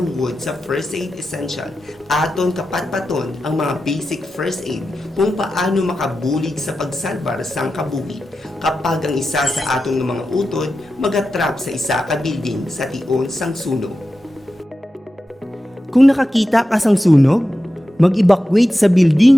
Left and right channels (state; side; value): normal; both; correlation 0.91